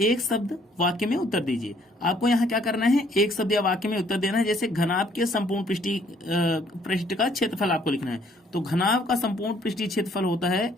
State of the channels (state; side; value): normal; both; correlation 0.63